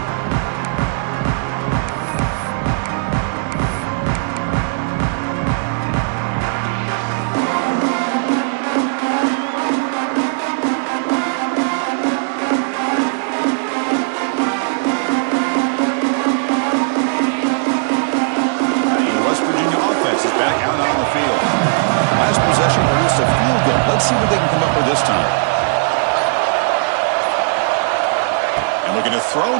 Let's see what they can come up with this time. And looking to throw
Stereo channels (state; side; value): silent; left; digital silence